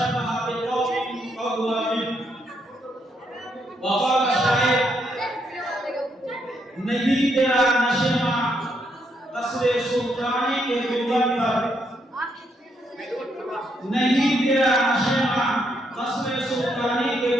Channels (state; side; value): normal; both; correlation 0.76